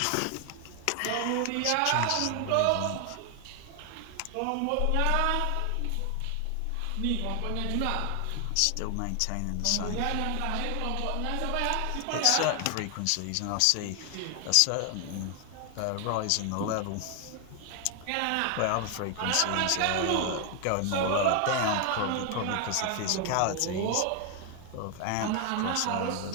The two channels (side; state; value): both; different; correlation 0.00